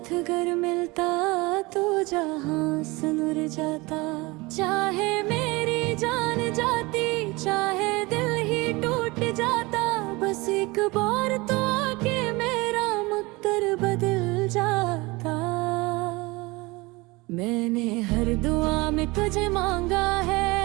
अगर मिलता तो जहां सुनुर जाता। चाहे मेरी जान जाती, चाहे दिल ही टूट जाता, बस एक बार तो आके मेरा मुक्तर बदल जाता। मैंने हर दुआ में तुझे मांगा है,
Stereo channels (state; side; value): quieter; left; 23.7 dB